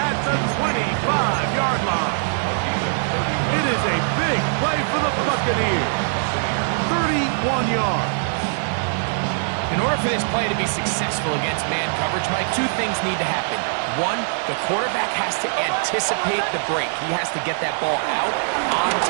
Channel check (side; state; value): left; silent; digital silence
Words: the 25-yard line. It is a big play for the Buccaneers. 31 yards. In order for this play to be successful against man coverage, Mike, two things need to happen. One, the quarterback has to anticipate the break. He has to get that ball out on